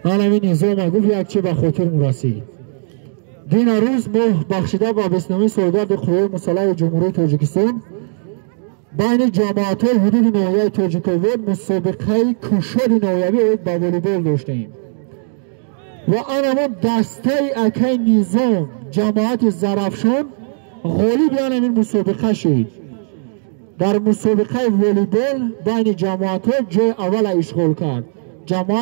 من همین نظام گفت یک چی به خاطر مرسی. دین روز ما بخشیده با بسنامی سالگرد قوای مسلح جمهوری تاجیکستان بین جماعت های حدود ناحیه تاجیکستان مسابقه کشور ناحیوی با والیبال داشتیم و آنمون دسته اکای نظام جماعت زرافشان غالب این مسابقه شد. در مسابقه والیبال بین جماعت ها جای اول اشغال کرد.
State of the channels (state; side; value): silent; left; 59 dB below the other